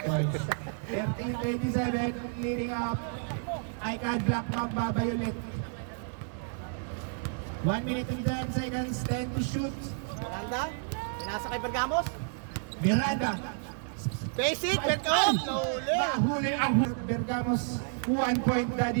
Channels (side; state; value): left; silent; 57 dB below the other